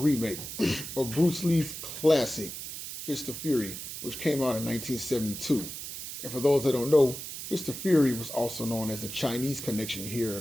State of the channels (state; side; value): noise; right; hiss, 8 dB below the sound